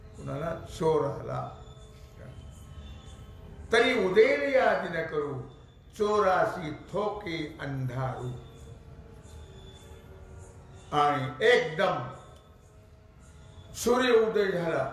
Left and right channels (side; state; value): both; identical; correlation 1.00